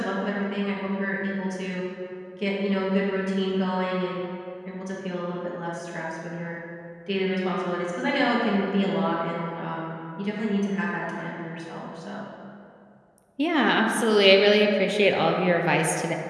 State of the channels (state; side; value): identical; both; correlation 1.00